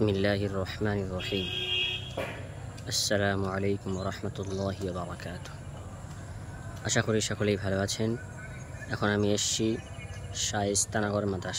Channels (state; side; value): identical; both; correlation 1.00